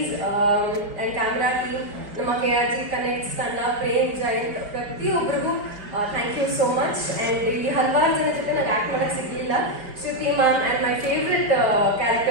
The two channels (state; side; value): late; left; 5.0 ms